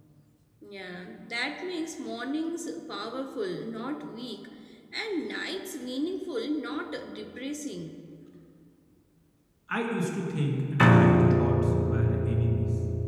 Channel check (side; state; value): both; identical; correlation 1.00